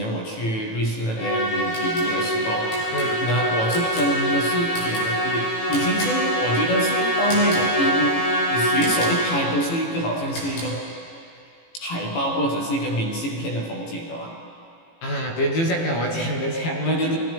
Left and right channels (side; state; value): right; late; 18 ms